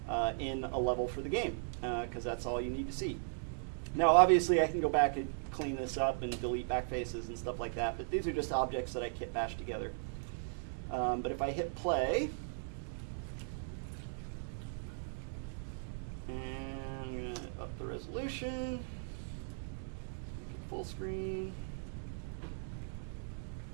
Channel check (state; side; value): silent; left; digital silence